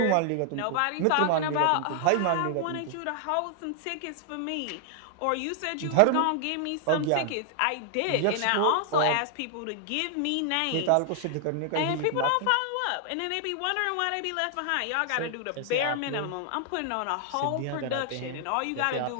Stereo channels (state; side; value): different; both; correlation 0.00